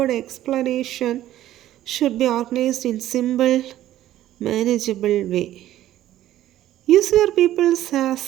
explanation should be organized in simple, manageable way. Use your pupils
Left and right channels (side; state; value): left; quieter; 13.4 dB